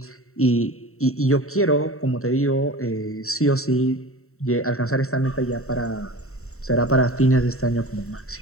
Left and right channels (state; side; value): late; right; 0.63 ms